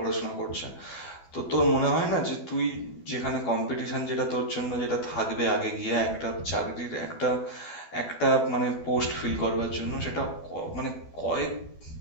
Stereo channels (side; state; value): right; late; 12 ms